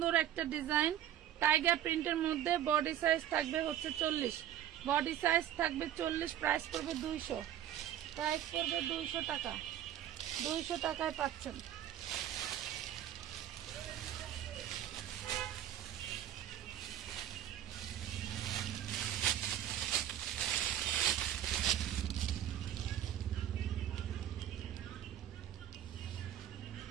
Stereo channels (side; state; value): left; quieter; 11.3 dB